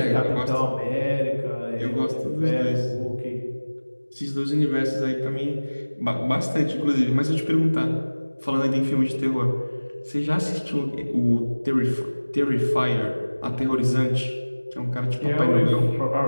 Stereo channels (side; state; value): both; inverted; correlation -1.00